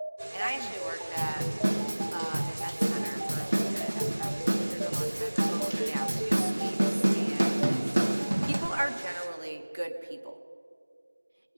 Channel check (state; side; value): inverted; both; correlation -1.00